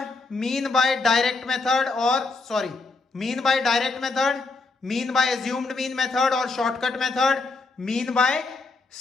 mean by direct method और sorry mean by direct method, mean by assumed mean method और shortcut method, mean by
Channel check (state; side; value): quieter; right; 3.8 dB